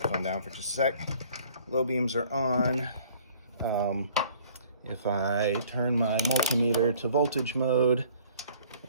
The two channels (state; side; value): inverted; both; correlation -0.55